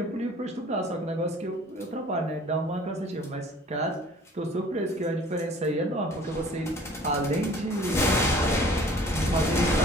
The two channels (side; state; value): both; normal; correlation 0.50